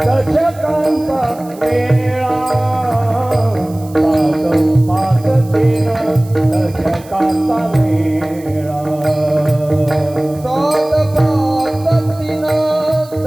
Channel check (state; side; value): noise; right; hiss, 23 dB below the sound